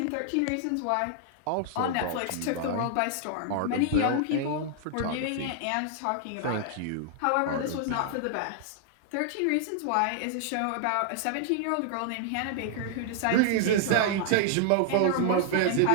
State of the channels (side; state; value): both; different; correlation -0.01